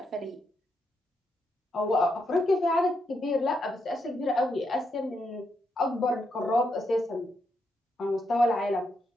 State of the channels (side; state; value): both; normal; correlation 0.81